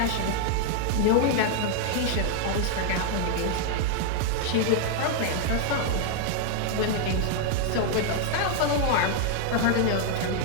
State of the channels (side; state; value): both; different; correlation 0.00